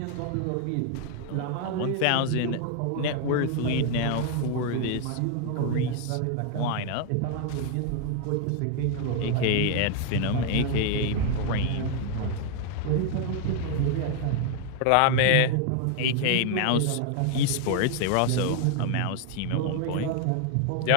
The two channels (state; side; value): different; both; correlation 0.00